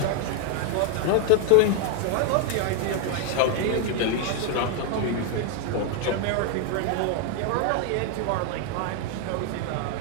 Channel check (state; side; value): different; both; correlation 0.01